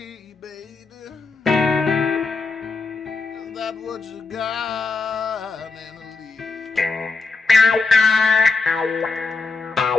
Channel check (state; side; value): quieter; right; 3.9 dB